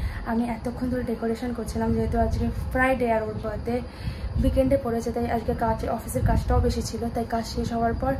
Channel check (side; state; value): both; identical; correlation 1.00